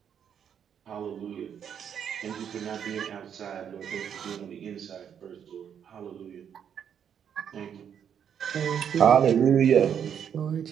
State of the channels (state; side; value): quieter; left; 8.3 dB